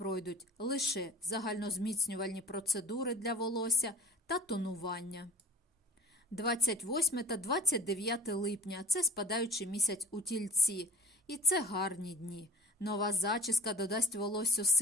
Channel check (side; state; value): both; normal; correlation 0.45